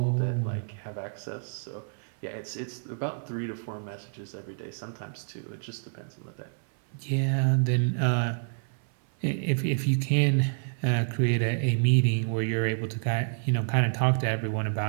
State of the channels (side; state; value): left; silent; 58 dB below the other